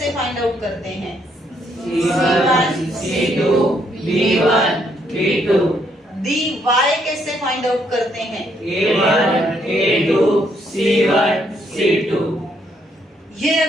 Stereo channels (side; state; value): both; normal; correlation 0.72